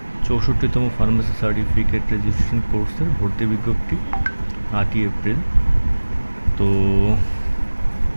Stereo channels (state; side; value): inverted; both; correlation -1.00